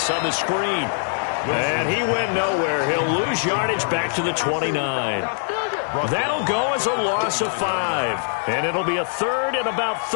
on the screen. And he went nowhere. He'll lose yardage back to the 29. That'll go as a loss of 5. And it'll be a third and about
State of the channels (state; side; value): silent; right; 64 dB below the other